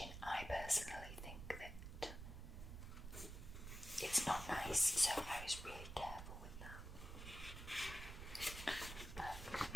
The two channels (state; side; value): noise; right; rumble, 9 dB below the sound